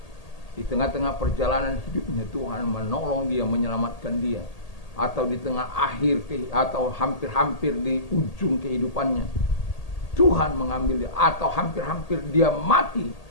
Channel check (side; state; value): right; late; 1.8 ms